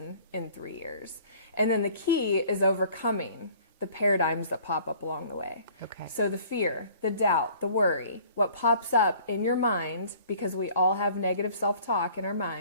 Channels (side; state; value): both; inverted; correlation -0.52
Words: in 3 years? And then the key is overcoming the paradigms that pop up along the way. Okay. So the fear, the doubt, the worry, what pops up in your mind, because we all have negative self-talk in our